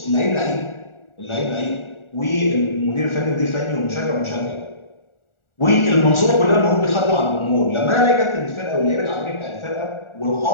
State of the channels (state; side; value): late; right; 1.4 ms